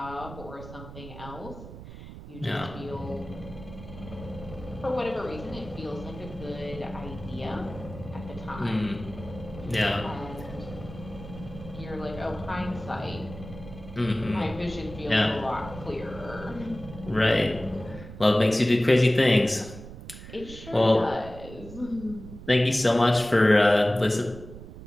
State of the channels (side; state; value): right; noise; rumble, 14 dB below the sound